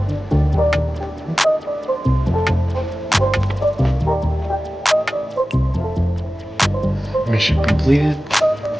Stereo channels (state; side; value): normal; both; correlation 0.95